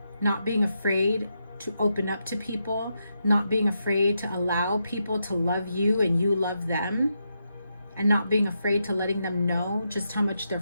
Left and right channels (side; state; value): both; inverted; correlation -0.84